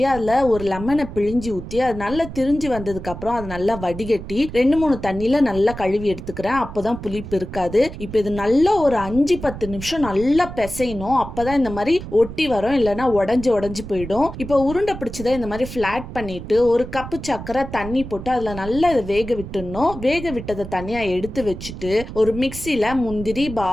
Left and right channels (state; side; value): noise; right; rumble, 11 dB below the sound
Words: அதில் ஒரு லெமனை பிழிஞ்சி ஊற்றி அது நல்லா திரிஞ்சு வந்ததுக்கு அப்புறம் அதை நல்லா வடிகட்டி 2-3 தண்ணியில நல்லா கழுவி எடுத்துக்கிறேன். அப்போதான் புளிப்பு இருக்காது. இப்போ இது நல்லா ஒரு 5-10 நிமிஷம் நல்லா பிசையணும். அப்பதான் இந்த மாதிரி ஒட்டி வரும், இல்லைன்னா உடஞ்சி போயிடும். இப்போ உருண்டை பிடிச்சதை இந்த மாதிரி ஃபிளாட் பண்ணிட்டு 1 கப்பு சர்க்கரை தண்ணி போட்டு அதில் நல்லா இதை வேக விட்டுடணும். வேக விட்டதை தனியாக எடுத்து வச்சுட்டு ஒரு மிக்சியில் முந்திரி,